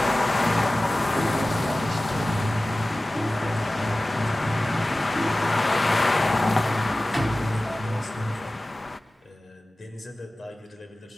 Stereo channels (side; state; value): both; normal; correlation 0.97